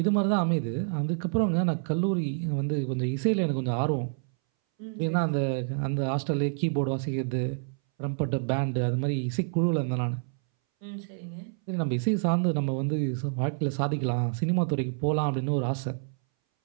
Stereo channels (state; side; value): silent; left; 59 dB below the other